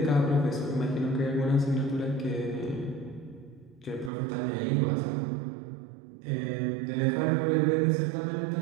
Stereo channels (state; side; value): drops out; left; at 4.1 s